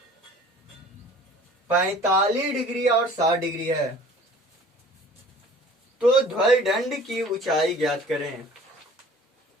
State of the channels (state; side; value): normal; both; correlation 0.48